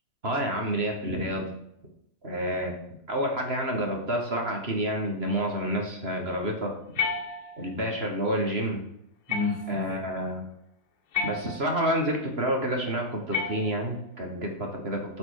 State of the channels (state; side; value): late; left; 3.0 ms